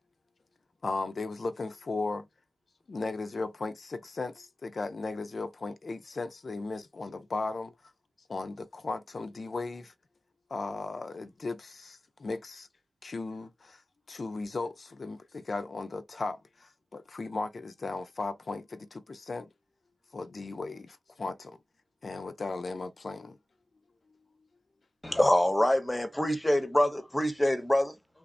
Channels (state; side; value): normal; both; correlation 0.97